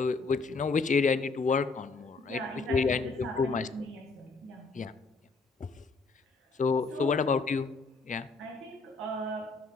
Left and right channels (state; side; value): quieter; right; 4.0 dB